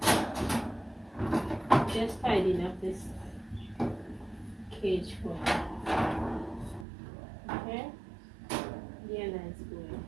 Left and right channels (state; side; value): drops out; left; at 6.9 s